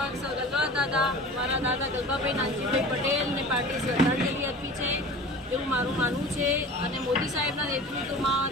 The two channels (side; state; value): both; normal; correlation 0.39